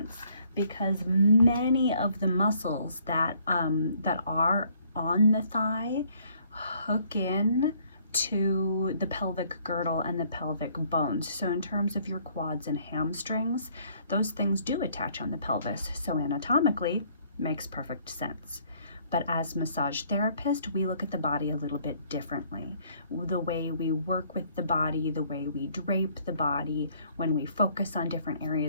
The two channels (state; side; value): inverted; both; correlation -0.64